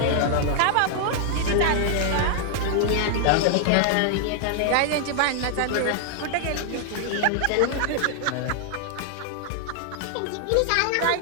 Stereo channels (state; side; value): different; both; correlation 0.00